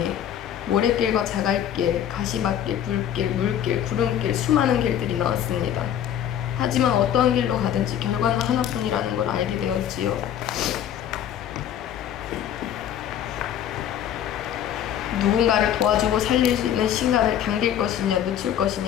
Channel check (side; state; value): right; quieter; 10.1 dB